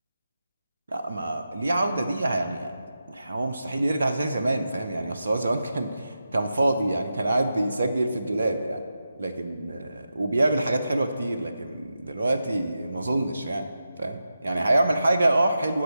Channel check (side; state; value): both; inverted; correlation -0.90